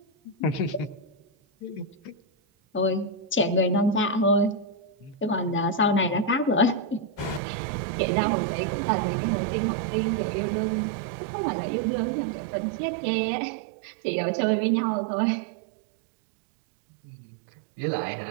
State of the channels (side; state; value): left; drops out; at 7.4 s